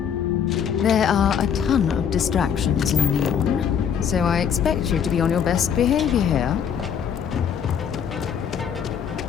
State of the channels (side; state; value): right; quieter; 7.9 dB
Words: are a ton of distractions in Neon, so I expect you to be on your best behavior here.